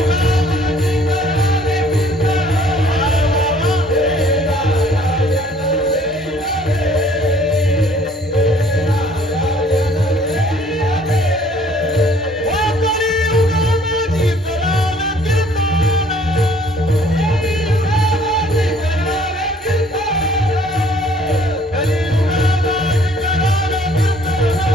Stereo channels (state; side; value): normal; both; correlation 0.58